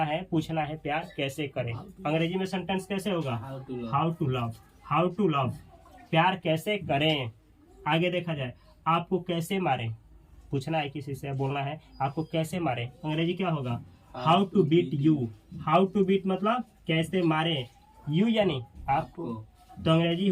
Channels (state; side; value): identical; both; correlation 1.00